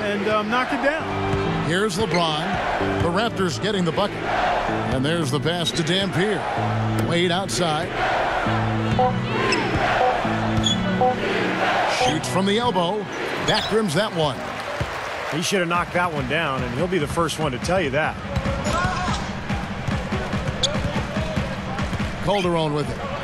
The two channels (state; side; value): identical; both; correlation 1.00